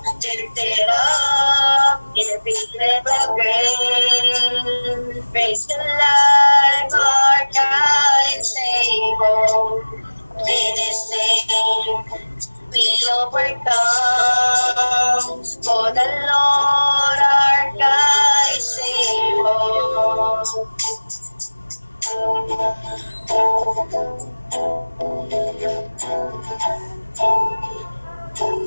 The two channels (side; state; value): both; inverted; correlation -1.00